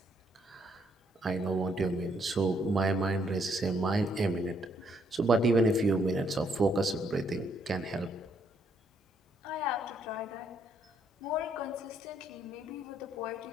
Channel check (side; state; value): both; normal; correlation 0.71